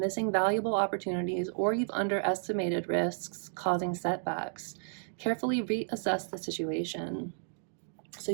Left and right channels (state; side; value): silent; left; digital silence